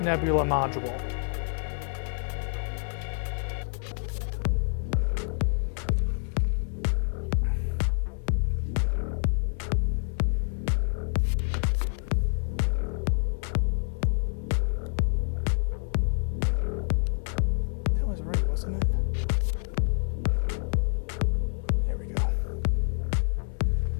Nebula module. That was right, wasn't it? There we go.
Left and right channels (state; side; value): silent; right; 60 dB below the other